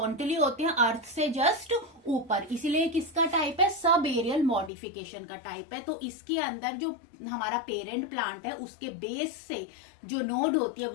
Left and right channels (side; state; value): right; drops out; at 4.7 s